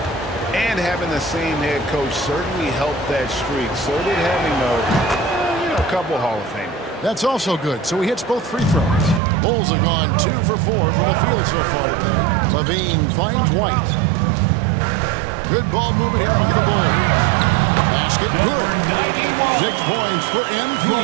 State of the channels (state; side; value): drops out; left; at 9.2 s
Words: and having the same head coach certainly helped that streak. So did having a couple Hall of Famers. That's also good. So he hits both free throws. The Bulls have gone 2 for 4 from the field so far today. Levine finds White. Good ball movement here by the Bulls. Basket good. 6 points for MP.